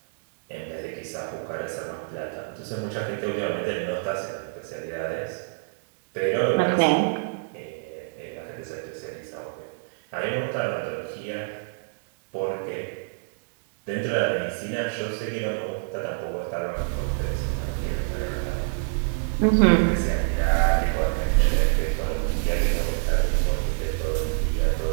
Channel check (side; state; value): left; silent; digital silence